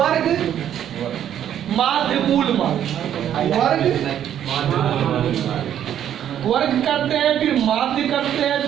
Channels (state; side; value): quieter; left; 10.3 dB